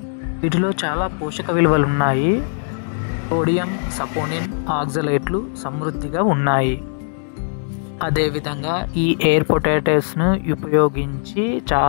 వీటిలో చాలా పోషక విలువలు ఉన్నాయి. సోడియం, సపోనిన్, ఆక్సలేట్లు సమృద్ధిగా ఉన్నాయి. అదేవిధంగా ఈ ఎయిర్ పొటాటోస్ను ఉపయోగించి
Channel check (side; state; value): right; silent; 66 dB below the other